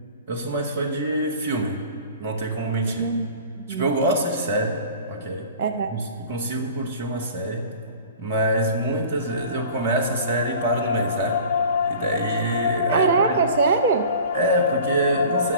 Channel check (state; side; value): inverted; both; correlation -0.43